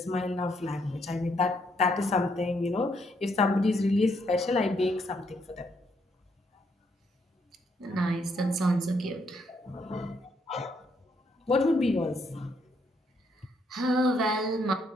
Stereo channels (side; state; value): both; normal; correlation 0.73